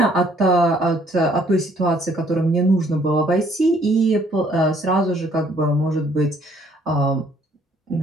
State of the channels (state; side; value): normal; both; correlation 0.63